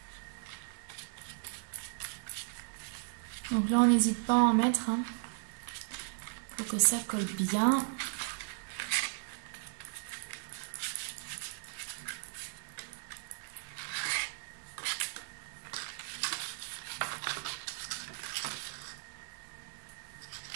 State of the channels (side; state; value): left; silent; digital silence